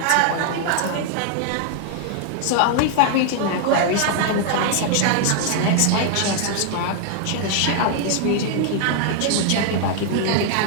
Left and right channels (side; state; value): both; different; correlation 0.00